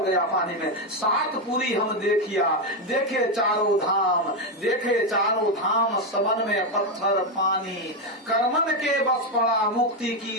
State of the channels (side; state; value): both; normal; correlation 0.07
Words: गया पानी में। सात पूरी हम देखिया, देखे चारों धाम, देखे चारों धाम, सबन में पत्थर पानी, कर्मन के बस पड़ा मुक्ति